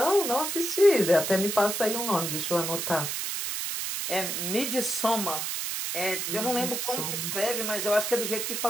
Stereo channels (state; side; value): noise; right; hiss, 2 dB below the sound